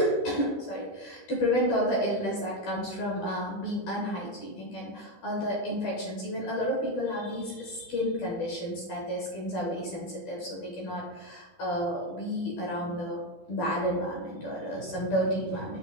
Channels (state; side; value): late; right; 12 ms